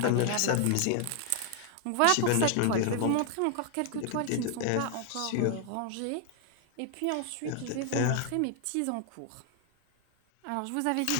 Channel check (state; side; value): different; both; correlation 0.00